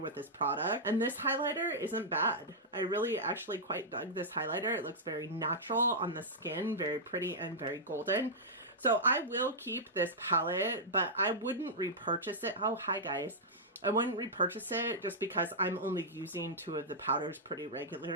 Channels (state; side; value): normal; both; correlation -0.10